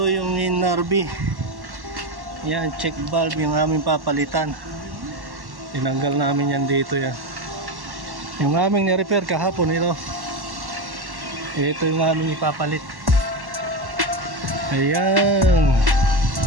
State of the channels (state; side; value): late; left; 1.1 ms